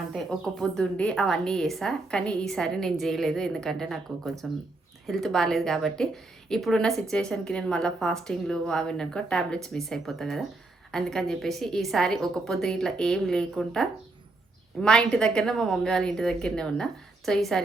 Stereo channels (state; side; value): quieter; left; 3.1 dB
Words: ఒక్క పొద్దుండి అవన్నీ చేసా. కానీ ఈసారి నేను చేయలేదు, ఎందుకంటే నాకు కొంచెం హెల్త్ బాగాలేదు కాబట్టి. ఇప్పుడున్న సిచ్యువేషన్కి నేను మళ్ళీ ఫాస్టింగ్లు అవి అనుకో టాబ్లెట్స్ మిస్ అయిపోతాయి కదా, అందుకని చెప్పేసి ఈసారి ఒక పొద్దు ఇట్లా ఏం లేకుండా మా ఇంటి దగ్గరనే, మా మమ్మీ వాళ్ళ ఇంటి దగ్గరనే ఉన్నా. సో